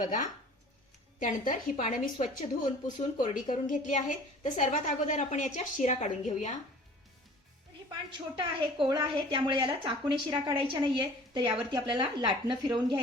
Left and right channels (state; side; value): normal; both; correlation 0.47